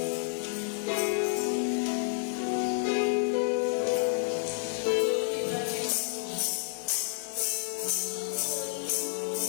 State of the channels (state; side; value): silent; right; 58 dB below the other